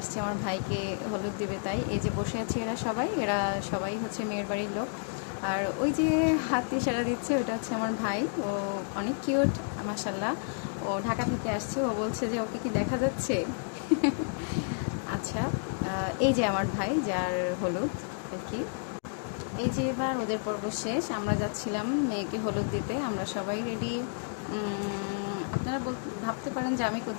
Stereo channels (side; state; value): right; silent; digital silence